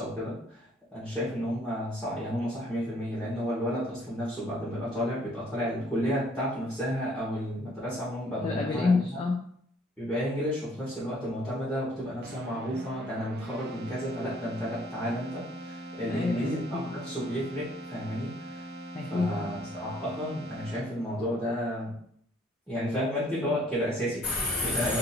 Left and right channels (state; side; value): normal; both; correlation 0.62